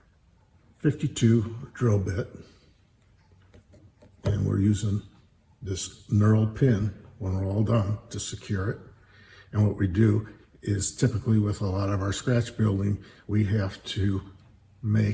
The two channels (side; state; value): both; identical; correlation 1.00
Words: 52 drill bit. And we're using this knurled pin when we're all done to secure it. And what we do is typically with a lot of our scratch building, we have to